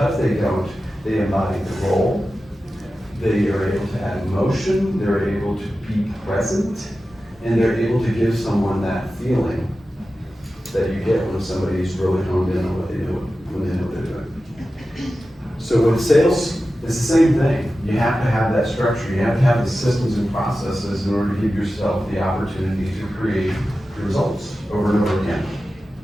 they don't, they embody the role. They are able to add emotion, they're able to be present, and they're able to give someone that feeling that you get when somebody's really honed in on what they do when they know what they're doing. So with sales, it's the same thing. You have to have that structure. You have to have the systems and processes in order to give yourself the opportunity to create results over and over again.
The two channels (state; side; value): normal; both; correlation 0.93